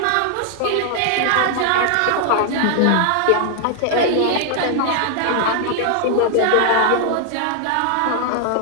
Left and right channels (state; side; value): different; both; correlation 0.00